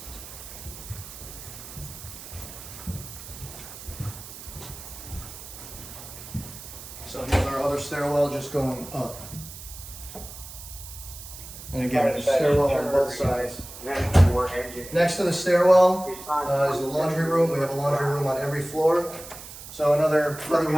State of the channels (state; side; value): noise; right; hiss, 14 dB below the sound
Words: So here's our other stairwell just going up. And again, there's a stairwell on both sides. Next to the stairwell is the laundry room. We have a laundry room on every floor. So another room